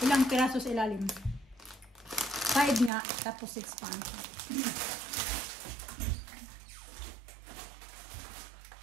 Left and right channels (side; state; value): left; drops out; at 2.9 s